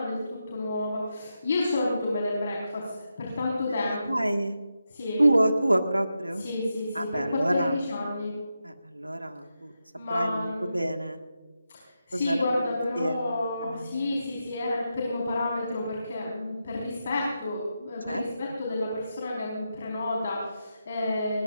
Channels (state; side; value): inverted; both; correlation -0.87